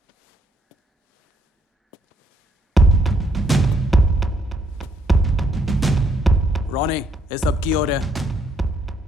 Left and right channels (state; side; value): normal; both; correlation 0.71